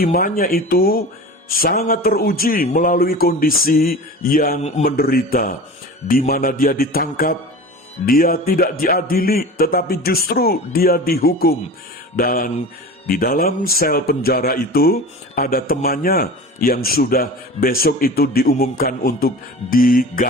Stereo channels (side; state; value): both; normal; correlation 0.35